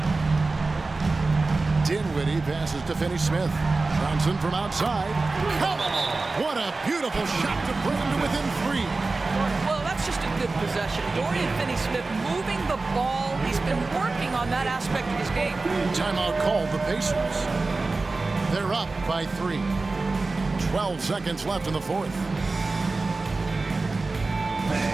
Dinwiddie passes to Finney-Smith. Johnson from outside. Come on! What a beautiful shot to bring him to within 3. Well, that's just a good possession. Dorian Finney-Smith moving the ball. He's been working on that aspect of his game. Timeout called the Pacers. They're up by 3. 12 seconds left in the fourth.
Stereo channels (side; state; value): left; quieter; 3.6 dB